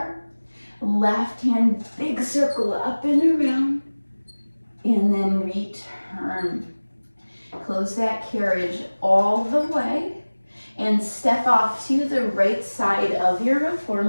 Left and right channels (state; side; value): inverted; both; correlation -1.00